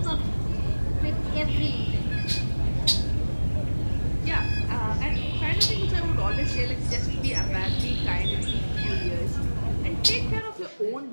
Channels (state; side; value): inverted; both; correlation -1.00